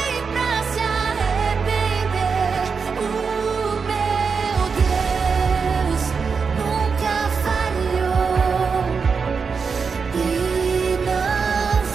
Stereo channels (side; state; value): left; quieter; 5.4 dB